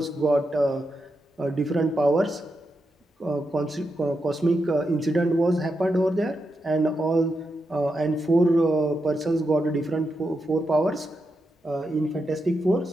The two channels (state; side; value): normal; both; correlation 0.86